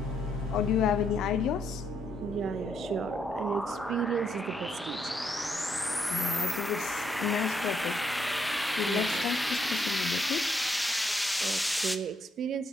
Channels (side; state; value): both; normal; correlation 0.75